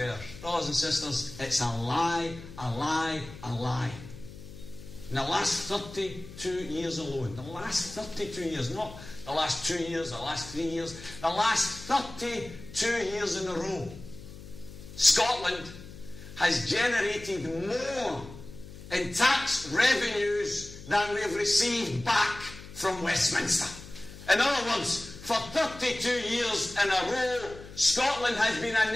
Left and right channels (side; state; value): left; noise; hum, 15 dB below the sound